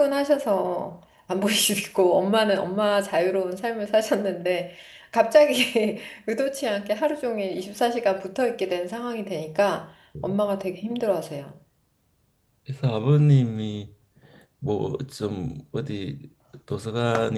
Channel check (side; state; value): both; identical; correlation 1.00